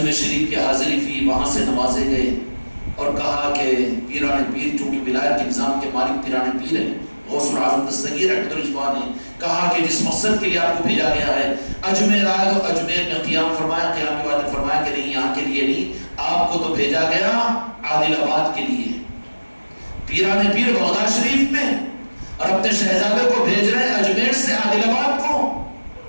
شریف کی حاضری ہوئی، وہاں سے نوازے گئے اور کہا کہ پیران پیر چونکہ ولایت کے نظام کے مالک پیران پیر ہیں، غوث العظم دستگیر رحمۃ اللہ نے کہا کہ جس مقصد کے لیے آپ کو بھیجا گیا ہے اجمیر آئے تو اجمیر میں قیام فرمایا، قیام کے بعد فرمایا کہ نہیں یہاں کے لیے نہیں، آپ کو تو بھیجا گیا عادل آباد کے لیے. پیران پیر بغداد شریف میں اور اپنے شہزادے کو بھیج رہے ہیں اجمیر سے عادل آباد کو.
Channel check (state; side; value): inverted; both; correlation -1.00